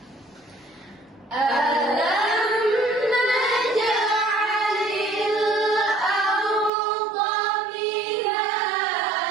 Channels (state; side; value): drops out; left; at 6.7 s